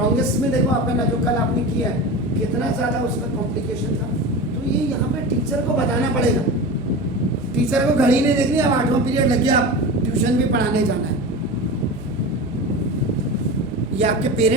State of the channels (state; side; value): noise; right; hum, 20 dB below the sound